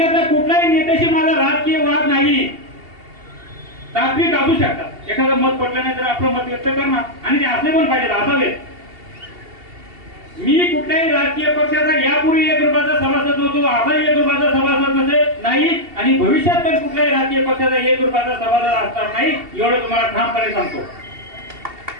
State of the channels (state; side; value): late; left; 2.7 ms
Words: कुठल्याही नेत्याशी माझा राजकीय वाद नाही. तात्विक असू शकतात, एखादं मत पटलं नाही तर आपलं मत व्यक्त करणार आणि ते असले पण पाहिजेत, असावेत. मी कुठल्याही राजकीय पक्षाचा यापूर्वी 1 रुपयाचा सभासद होतो, आता 1 रुपयाचा सभासद नाही आणि भविष्यात पण कुठल्याही राजकीय पक्षाचा 1 रुपयाचा सभासद असणार नाही, एवढं तुम्हाला ठामपणे सांगतो.